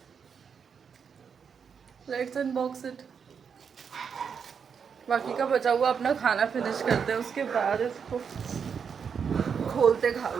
Let's unbox it. बाकी का बचा हुआ अपना खाना फिनिश करते हैं, उसके बाद इसको खोलते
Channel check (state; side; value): quieter; left; 6.6 dB